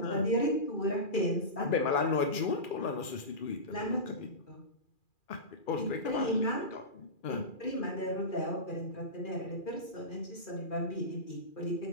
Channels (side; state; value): right; late; 2.4 ms